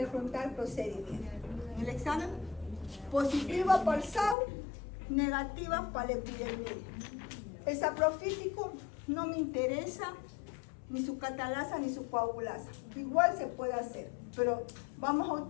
voy a preguntar procedimiento. En el examen, positiva para el SAU, negativa para el epidermidis. El saprofítico no me interesa ni su catalasa ni su coagulasa. Igual se puede hacer, pero vamos a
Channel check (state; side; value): drops out; right; at 4.4 s